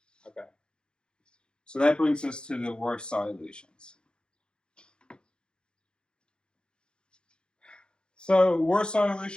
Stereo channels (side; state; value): right; late; 0.050 ms